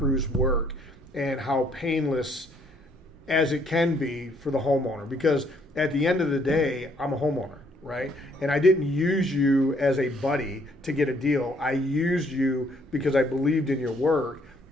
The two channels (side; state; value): both; normal; correlation 0.66